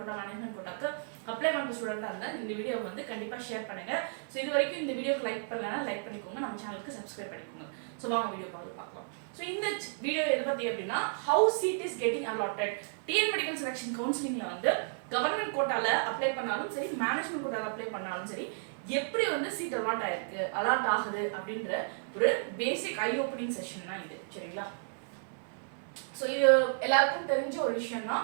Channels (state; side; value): silent; left; 56 dB below the other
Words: மேனேஜ்மெண்ட் கோட்டாக்கு அப்ளை பண்ற ஸ்டூடெண்டா இருந்தா இந்த வீடியோ கண்டிப்பா ஷேர் பண்ணுங்க. ஸோ இது வரைக்கும் இந்த வீடியோக்கு லைக் பண்ணலன்னா லைக் பண்ணிக்கோங்க, நம்ம சேனலுக்கு சப்ஸ்கிரைப் பண்ணிக்கோங்க. ஸோ வாங்க வீடியோ பார்க்கலாம். ஸோ இந்த வீடியோ எதை பத்தி அப்படின்னா how seat is getting allotted. TN medical selection கவுன்சிலிங்ல கவர்மெண்ட் கோட்டால அப்ளை பண்ணாலும் சரி, மேனேஜ்மெண்ட் கோட்டால அப்ளை பண்ணாலும் சரி, எப்படி சீட் அலாட் ஆயிருக்கு, அலாட் ஆகுது அப்படின்ற ஒரு பேசிக் ஐ ஓப்பனிங் செஷன் தான் இது. சரிங்களா? ஸோ இது எல்லாருக்கும் தெரிஞ்ச ஒரு விஷயம்